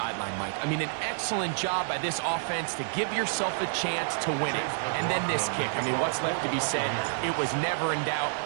Mike. I mean, an excellent job by this offense to give yourself a chance to win it. And then this kick. I mean, what's left to be said? It was never in doubt,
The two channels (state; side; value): silent; left; 59 dB below the other